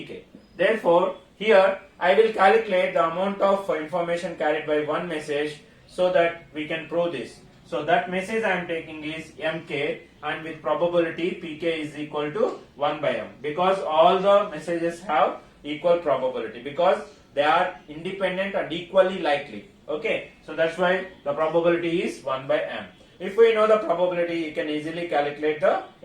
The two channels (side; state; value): both; identical; correlation 1.00